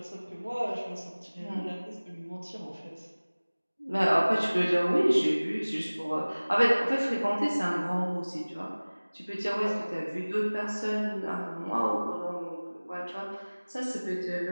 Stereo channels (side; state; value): both; inverted; correlation -1.00